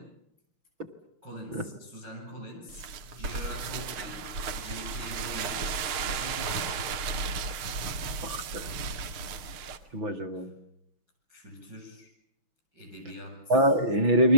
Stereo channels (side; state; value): left; late; 6.5 ms